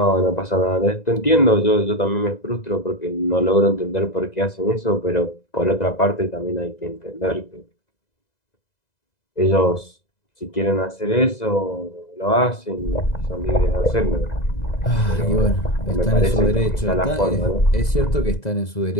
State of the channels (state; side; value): late; right; 2.0 ms